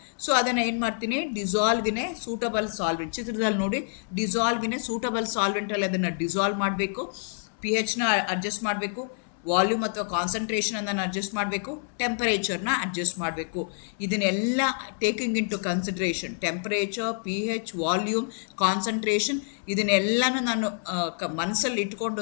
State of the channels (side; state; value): right; silent; 60 dB below the other